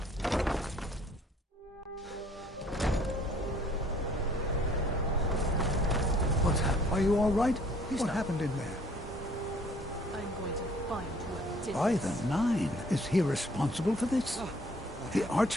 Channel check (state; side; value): normal; both; correlation 0.58